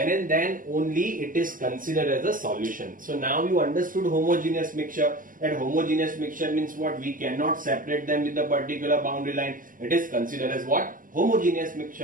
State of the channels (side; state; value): left; late; 0.40 ms